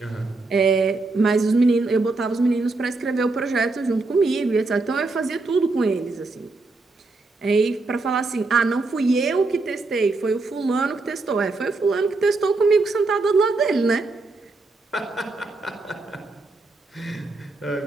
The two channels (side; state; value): left; quieter; 3.5 dB